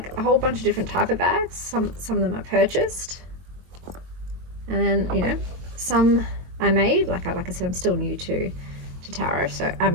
whole bunch of different type of bags. Some of them I purchased, and then some I made. Like I said, I'm still new to tarot, so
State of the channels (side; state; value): left; late; 22 ms